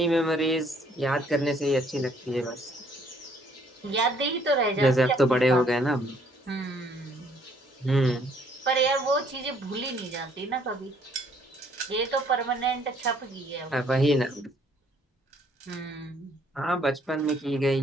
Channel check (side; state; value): both; normal; correlation 0.64